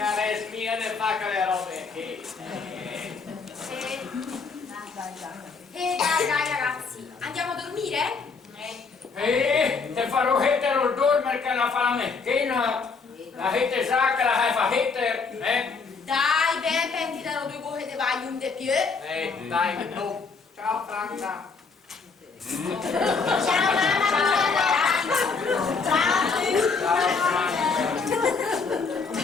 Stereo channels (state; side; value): quieter; right; 4.8 dB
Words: smiene fa che le robe che... Dai ragazzi, andiamo a dormire? Te farò hettere il dormire che la fa la mecchina. La hette sa che la fa hettere, Dai, ben pensi dalle due cose di vai un de più. Dai, no. Ciao Franca. Ciao mamma,